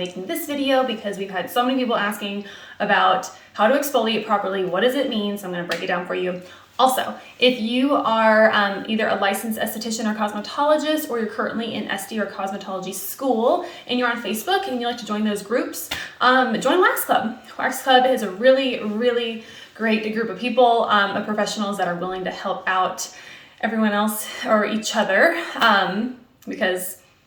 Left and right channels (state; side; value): identical; both; correlation 1.00